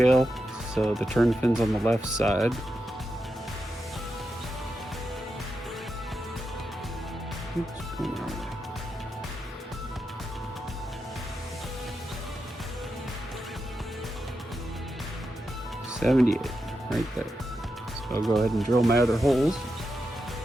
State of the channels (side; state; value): both; normal; correlation 0.87